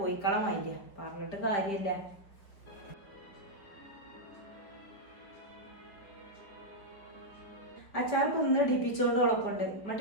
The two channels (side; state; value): right; late; 5.3 ms